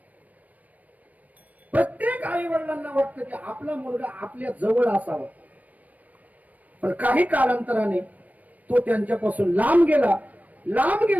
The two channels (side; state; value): left; late; 0.077 ms